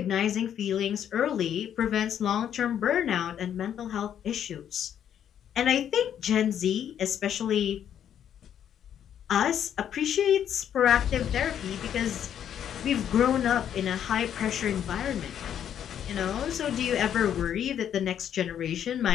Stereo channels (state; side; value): quieter; right; 9.5 dB